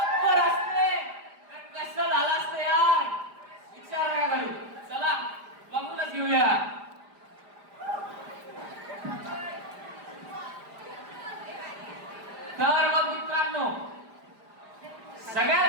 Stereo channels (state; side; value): late; left; 5.0 ms